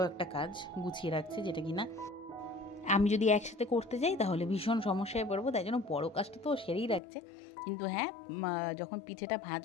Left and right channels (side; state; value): right; drops out; at 7.0 s